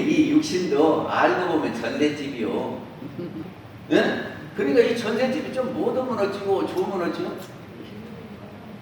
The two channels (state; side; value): identical; both; correlation 1.00